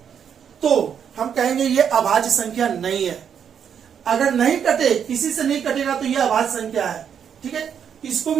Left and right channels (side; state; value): left; quieter; 8.0 dB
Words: तो हम कहेंगे ये अभाज्य संख्या नहीं है। अगर नहीं कटे, किसी से नहीं कटेगा तो ये अभाज्य संख्या है। ठीक है, इसको